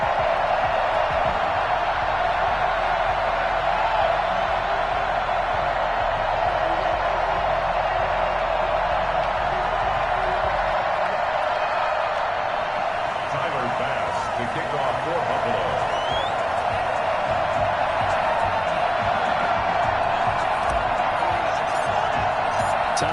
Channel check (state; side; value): identical; both; correlation 1.00